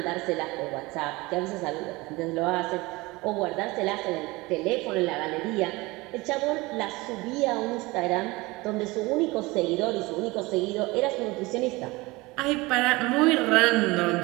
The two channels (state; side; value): quieter; left; 22.4 dB